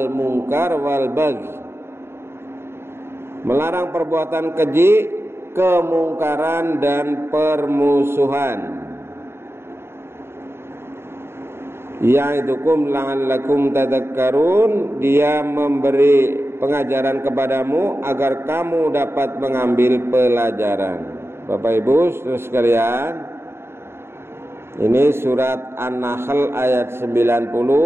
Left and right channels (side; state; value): left; late; 0.12 ms